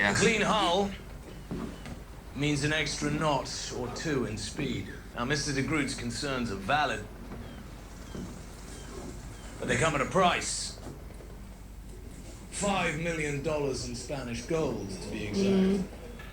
Clean hull means an extra knot or two in speed. Now, Mr. de Groot's concerns are valid, but they come at a price. $5 million in Spanish gold, to be exact.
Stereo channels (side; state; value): both; identical; correlation 1.00